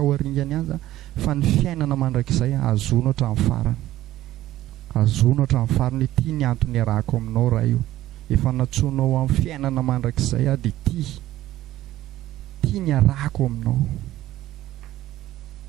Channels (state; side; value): quieter; left; 14.7 dB